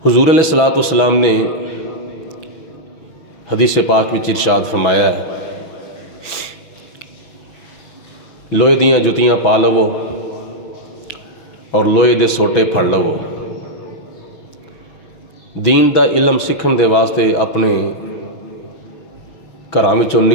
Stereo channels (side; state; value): right; late; 6.1 ms